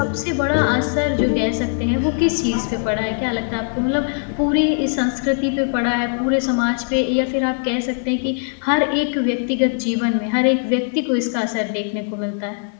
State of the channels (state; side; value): silent; right; 66 dB below the other